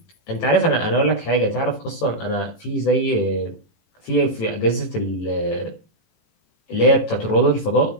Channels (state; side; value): late; right; 18 ms